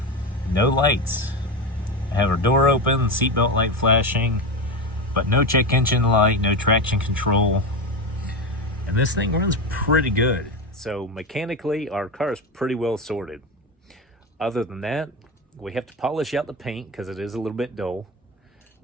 no lights. I have our door open, seatbelt light flashing, but no check engine light, no traction control, and this thing runs pretty good. So mechanically, our car is pretty well sorted. Other than that, we have to polish out the paint because it is a little bit dull.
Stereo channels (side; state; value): both; normal; correlation 0.18